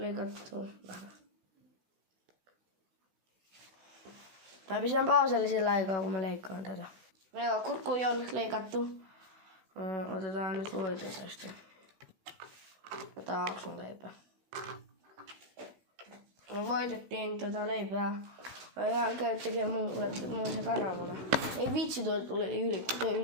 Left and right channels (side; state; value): left; late; 16 ms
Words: vähän. Mä pistän pauselle sillä aikaa, kun mä leikkaan tätä. Joo, kurkku on nyt leikattu. Otetaan nyt voita tästä. Otetaan aksun leipää. Me voitettiin tätä leipää. Mä ihan käyn tekemään muun se kananmuna. Ei vitsi, toi tuli